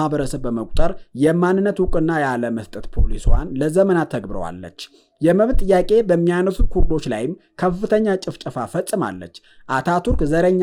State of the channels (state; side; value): identical; both; correlation 1.00